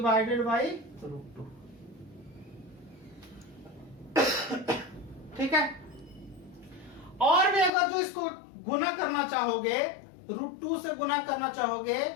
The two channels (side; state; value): right; drops out; at 7.7 s